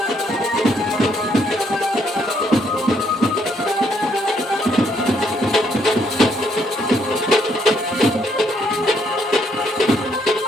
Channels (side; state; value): both; normal; correlation 0.71